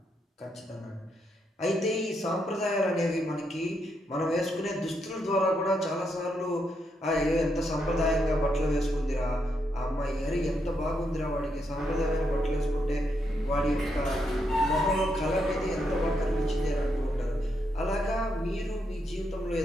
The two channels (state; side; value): normal; both; correlation 0.79